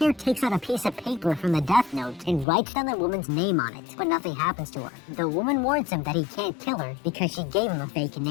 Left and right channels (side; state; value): right; drops out; at 2.5 s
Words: takes out a piece of paper from the death note and writes down the woman's name on it, but nothing happens to her. The woman warns him that he can't kill her because she gave him a fake